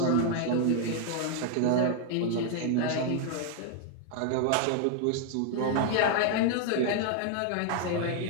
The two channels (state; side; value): different; both; correlation 0.00